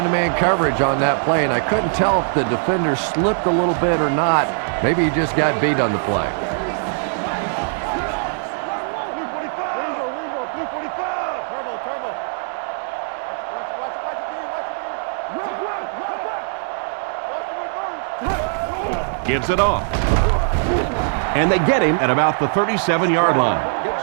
coverage on that play, and I couldn't tell if the defender slipped a little bit or not. Maybe he just got beat on the play. Blue 45. Blue 45. Turbo. Watch Gives it off. And they get him at about the 37-yard line.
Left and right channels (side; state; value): left; silent; 65 dB below the other